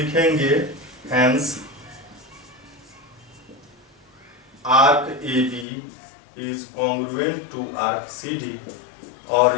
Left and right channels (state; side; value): drops out; right; at 5.7 s